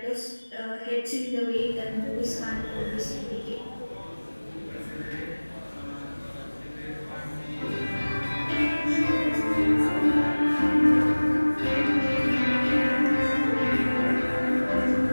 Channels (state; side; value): inverted; both; correlation -1.00